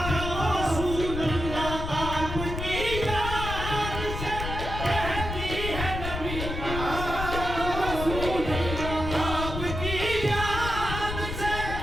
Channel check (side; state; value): left; noise; rumble, 5 dB below the sound